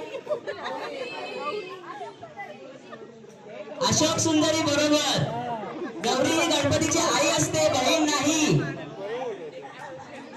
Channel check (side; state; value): both; identical; correlation 1.00